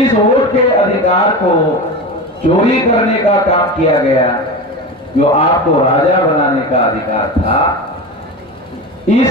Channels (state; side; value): normal; both; correlation 0.26